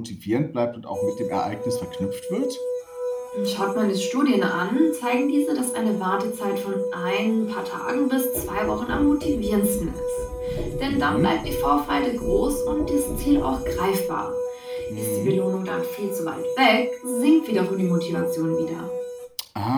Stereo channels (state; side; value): identical; both; correlation 1.00